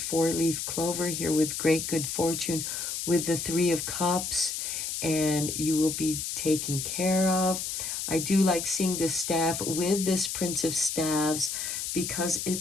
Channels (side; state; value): left; noise; hiss, 3 dB below the sound